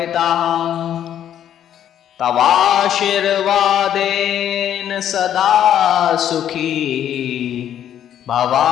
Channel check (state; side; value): quieter; right; 10.3 dB